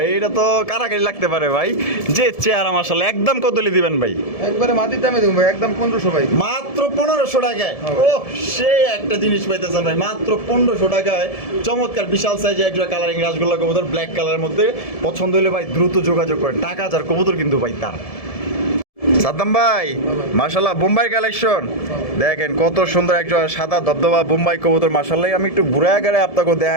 এটা তো কারাকারি লাগতে পারে ভাই। যে চেহারা মাশাআল্লাহ, একদম কত দিবেন ভাই? একবারে মাটির দামে দেবো ভাই, একদম 1500 ভাই। মাত্র 1500 টাকায়। ও সেই একটা জিনিস পাইতেছেন ভাই মাত্র 1500 টাকায়। চমৎকার বিশাল সাইজে একটা কালারিং রাসগোল্লা কবুতর, ব্ল্যাক কালারের মধ্যে। পছন্দ হলে ভাই দ্রুত যোগাযোগ করেন, টাকা যার কবুতর কিন্তু ভাই তার। সাদ্দাম ভাই, মাশাআল্লাহ বোম্বাই কালেকশন দেখেন কত সুন্দর একটা সাদা ধবধবা বোম্বাই কবুতর মাশাআল্লাহ। আমি একটু ঘুরে আগারে আপনাকে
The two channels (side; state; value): right; late; 1.7 ms